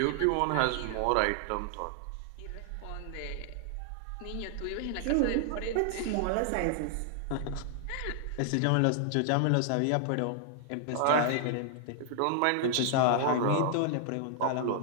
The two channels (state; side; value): different; both; correlation -0.01